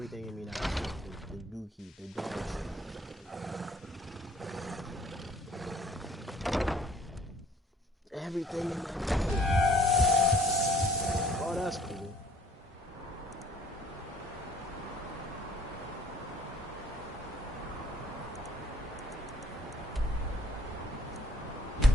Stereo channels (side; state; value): both; normal; correlation 0.58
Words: in me now. The dookie, the dog shit. Everything in my body. Oh, that's cool.